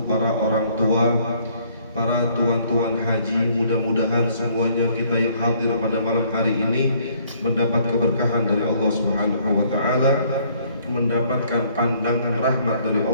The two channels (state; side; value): inverted; both; correlation -0.62